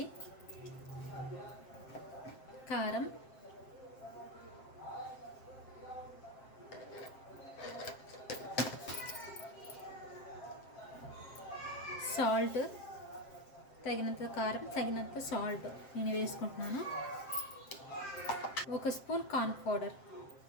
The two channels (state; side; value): late; right; 7.6 ms